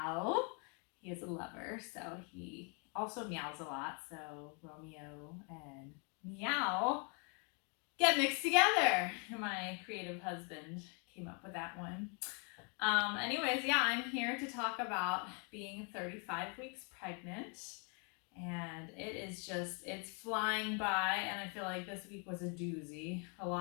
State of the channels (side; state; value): right; quieter; 36.1 dB